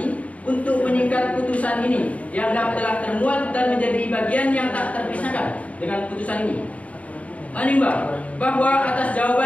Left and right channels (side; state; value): right; late; 0.067 ms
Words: untuk meningkat putusan ini dianggap telah termuat dan menjadi bagian yang tak terpisahkan dengan putusan ini. Menimbang bahwa atas